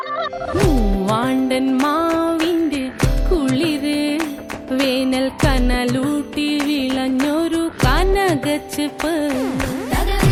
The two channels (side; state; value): both; identical; correlation 1.00